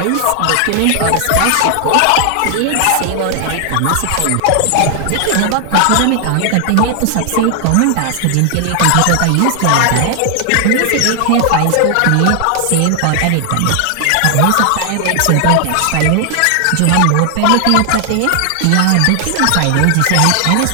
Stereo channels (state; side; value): different; both; correlation 0.00